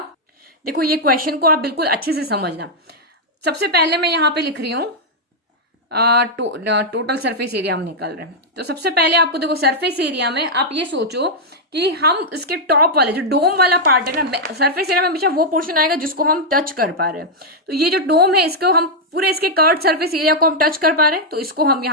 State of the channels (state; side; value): normal; both; correlation -0.04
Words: देखो ये क्वेश्चन को आप बिल्कुल अच्छे से समझना। सबसे पहले मैं यहाँ पे लिख रही हूँ टोटल सरफेस एरिया हम निकाल रहे हैं। तो सबसे पहले आपको देखो सरफेस एरिया में आप ये सोचो कि हम इसके टॉप वाले जो डोम वाला पार्ट है ना, सरफेस एरिया में हमेशा वो पोर्शन आएगा जिसको हम टच कर पा रहे हैं। तो ये जो डोम है, इसको हम पूरे इसके कर्व सरफेस एरिया को हम टच कर पा रहे हैं, तो इसको हम